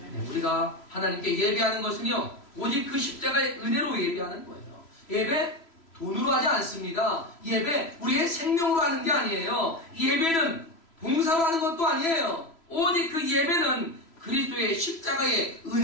네, 우리가 하나님께 예배하는 것은요, 오직 그 십자가의 은혜로 예배하는 거예요. 예배 돈으로 하지 않습니다. 예배 우리의 생명으로 하는 게 아니에요. 예배는 봉사로 하는 것도 아니에요. 오직 그 예배는 그리스도의 십자가의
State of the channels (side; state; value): right; late; 3.0 ms